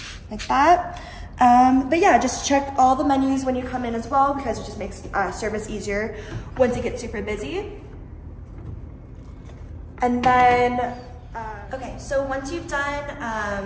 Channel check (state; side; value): identical; both; correlation 1.00